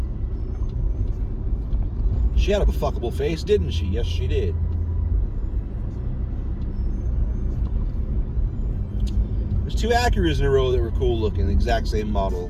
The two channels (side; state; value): both; identical; correlation 1.00